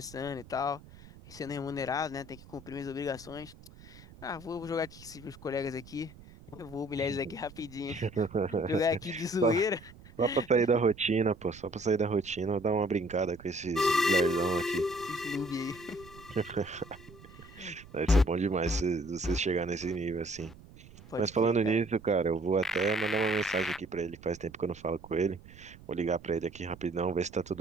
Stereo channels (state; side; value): noise; right; rumble, 20 dB below the sound